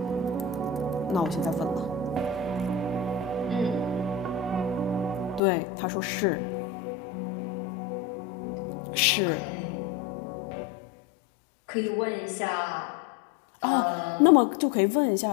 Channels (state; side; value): drops out; right; at 5.4 s